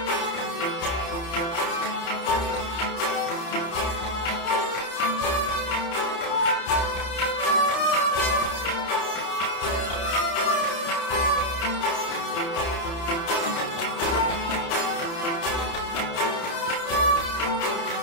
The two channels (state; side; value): late; right; 30 ms